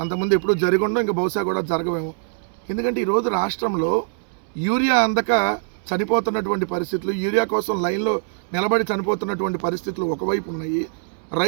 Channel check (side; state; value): left; silent; 60 dB below the other